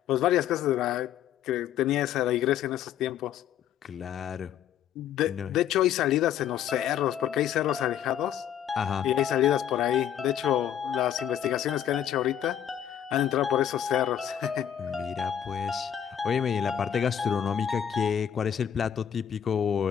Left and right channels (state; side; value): quieter; right; 9.7 dB